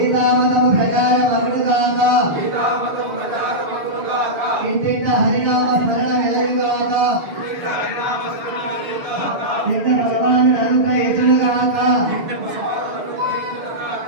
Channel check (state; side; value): late; left; 6.8 ms